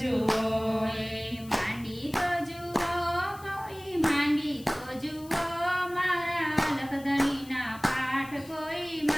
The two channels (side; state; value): left; noise; hiss, 21 dB below the sound